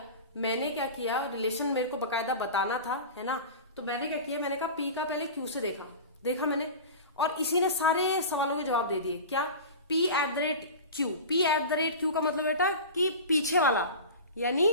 किया, रिलेशन मेरे को बकायदा बताना था, है ना, तो मैंने क्या किया, मैंने कहा पी का पहले क्यू से देखा मैंने, और इसी ने सारे सवालों के जवाब दे दिए। क्या, P at the rate Q, P at the rate Q का मतलब बेटा कि पीछे वाला, यानी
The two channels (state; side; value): inverted; both; correlation -0.32